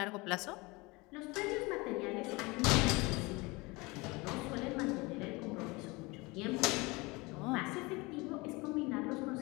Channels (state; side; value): quieter; right; 24.5 dB